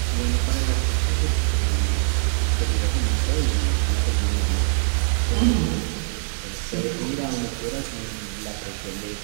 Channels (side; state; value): left; silent; digital silence